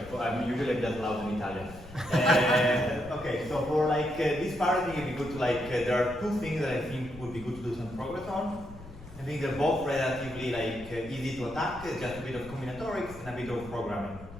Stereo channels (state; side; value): noise; left; rumble, 16 dB below the sound